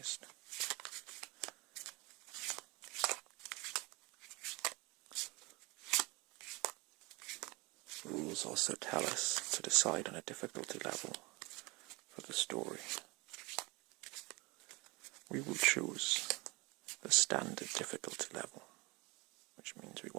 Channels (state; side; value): quieter; left; 25.7 dB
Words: Rules also tell us to decide on a difficulty level for the story. We will choose the standard difficulty level, which means we